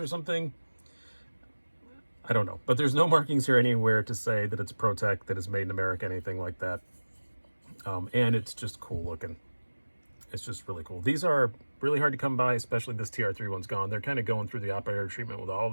something, I don't know. But there's no markings here anywhere to say that it's ProTech, that it's made in America, anything like that. And it's just cool looking. It's just really cool. These are really hard to come by, especially this TR3 one's gone. They're kind of going through the operator treatment with all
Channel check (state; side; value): inverted; both; correlation -1.00